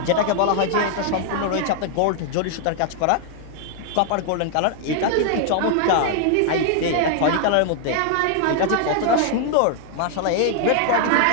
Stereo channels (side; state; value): both; different; correlation 0.00